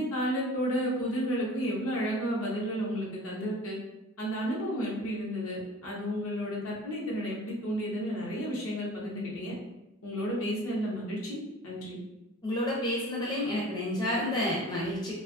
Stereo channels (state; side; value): normal; both; correlation 0.43